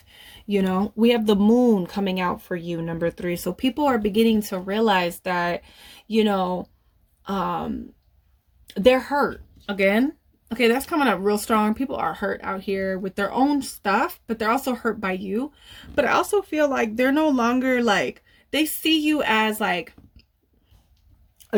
You know, we have the moon coming out for you, number 3. So people are beginning to realize that, you know, they're hurt again. Okay, that's coming up real strong. People are hurt out here with their own stuff, but they're also hurt by you. But I also feel like they're no longer, like, they see you as like a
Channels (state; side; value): identical; both; correlation 1.00